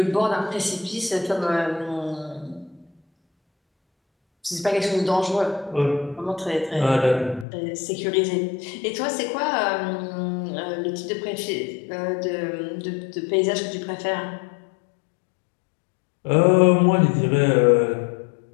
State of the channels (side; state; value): right; drops out; at 7.5 s